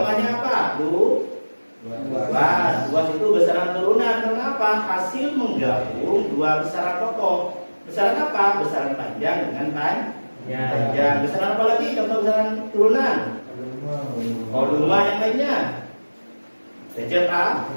apa? Luas itu besaran turunan. Kenapa? Hasil menggabung dua besaran pokok. Besaran apa? Besaran panjang dengan panjang. Besaran apa lagi? Contoh besaran turunan. Volume yang lainnya.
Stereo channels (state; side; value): inverted; both; correlation -1.00